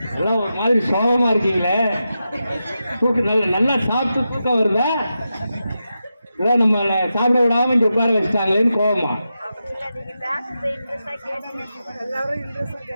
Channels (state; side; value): inverted; both; correlation -0.89